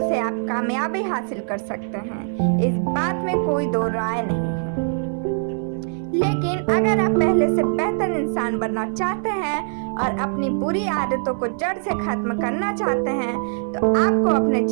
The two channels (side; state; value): left; silent; 59 dB below the other